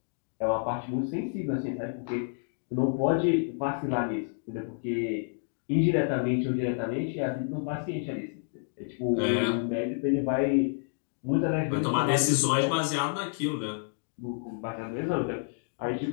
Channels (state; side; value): silent; right; digital silence